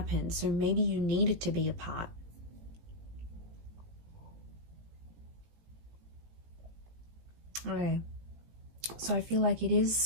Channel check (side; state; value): left; late; 18 ms